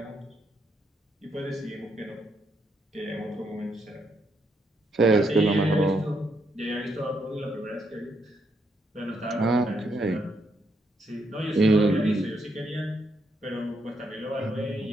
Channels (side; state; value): both; normal; correlation 0.77